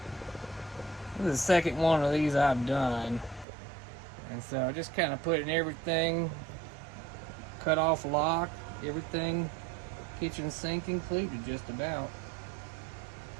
This is the second one of these I've done. And so just kind of putting everything, cut off lock, everything, kitchen sink included just about.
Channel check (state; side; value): drops out; left; at 3.5 s